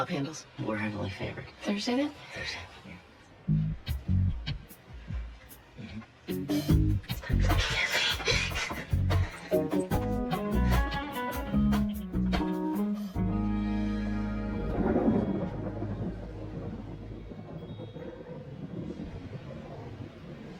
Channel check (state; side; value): identical; both; correlation 1.00